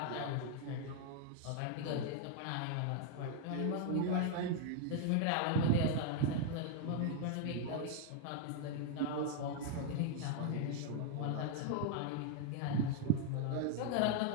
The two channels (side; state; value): both; different; correlation 0.00